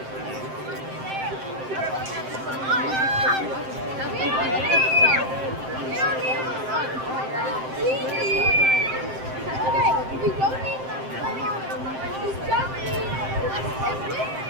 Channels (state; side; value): late; left; 7.7 ms